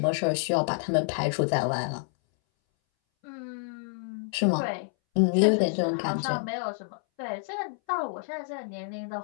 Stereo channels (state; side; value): silent; right; 59 dB below the other